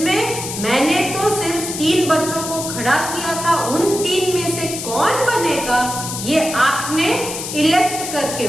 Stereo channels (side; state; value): left; noise; hiss, 6 dB below the sound